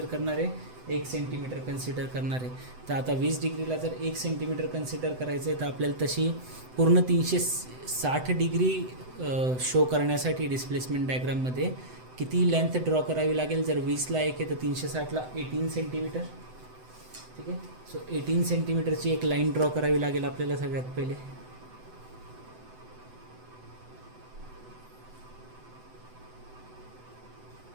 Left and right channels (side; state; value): left; late; 7.9 ms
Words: करणार आहे, 1 सेंटीमीटर कन्सिडर करणार आहे. तर आता 20 डिग्रीला जर 1 सेंटीमीटर कन्सिडर करायचं आहे तर आपल्याला तशी पूर्ण 360 डिग्री शो करण्यासाठी डिस्प्लेसमेंट डायग्राममध्ये किती लेंथ ड्रॉ करावी लागेल. जर 20ला 1 आहे तर 360ला 18 सेंटीमीटर. ठीक आहे, सो 18 सेंटीमीटरची एक लाईन ड्रॉ करावी लागेल आपल्याला सगळ्यात पहिले.